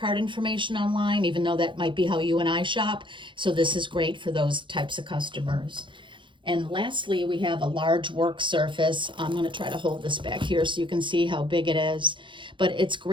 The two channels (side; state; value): left; late; 0.23 ms